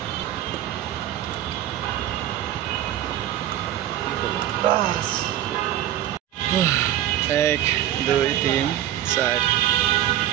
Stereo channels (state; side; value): quieter; left; 12.3 dB